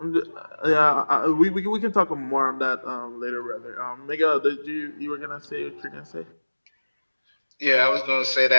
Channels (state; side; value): inverted; both; correlation -1.00